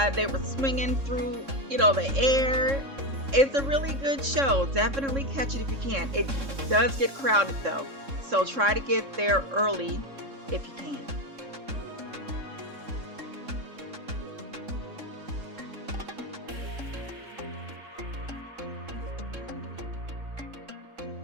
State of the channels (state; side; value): late; left; 3.6 ms